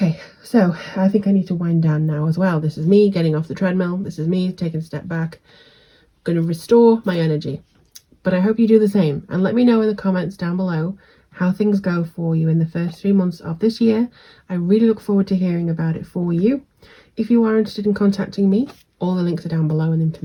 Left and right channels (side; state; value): both; identical; correlation 1.00